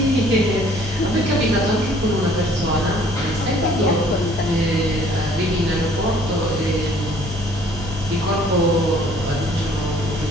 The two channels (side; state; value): both; normal; correlation 0.58